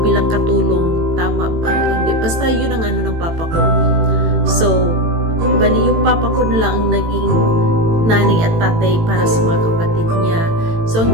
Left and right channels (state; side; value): late; left; 18 ms